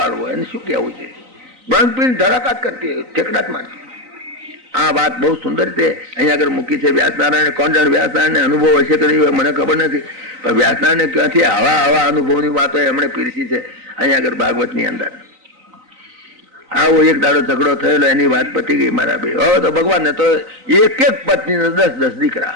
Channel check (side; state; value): left; late; 3.9 ms